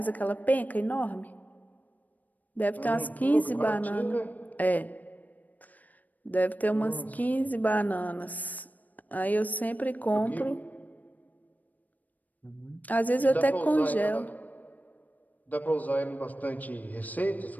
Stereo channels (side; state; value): right; late; 0.079 ms